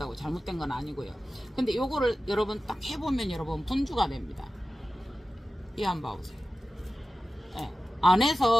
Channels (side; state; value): both; normal; correlation 0.94